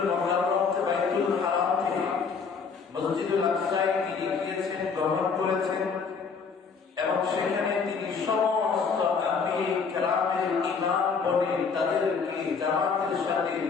মুকাররম থেকে বাইতুল হারাম থেকে মসজিদুল আকসায় তিনি গিয়েছেন, গ্রহণ করেছেন এবং সেখানে তিনি সমস্ত আম্বিয়া কেরামের ইমাম বনে তাদেরকে জামাতের সাথে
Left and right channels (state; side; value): quieter; right; 5.5 dB